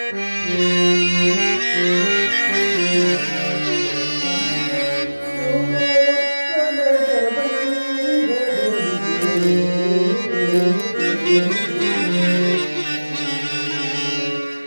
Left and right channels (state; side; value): inverted; both; correlation -1.00